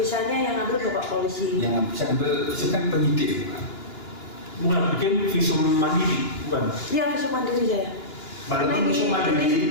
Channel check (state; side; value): late; right; 2.9 ms